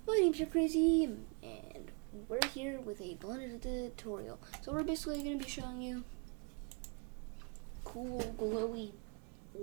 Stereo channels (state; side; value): quieter; left; 35.4 dB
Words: My name's JPcrazy, and we're here with a blended tutorial. So we're basically going to be showing you cool glowy